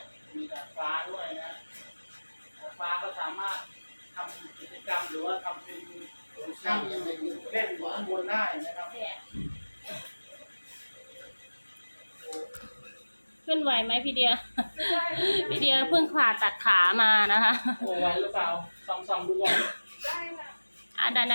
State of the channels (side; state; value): both; inverted; correlation -1.00